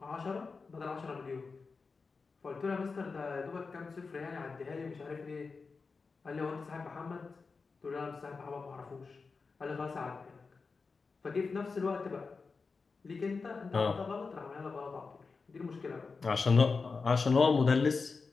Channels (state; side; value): quieter; right; 4.5 dB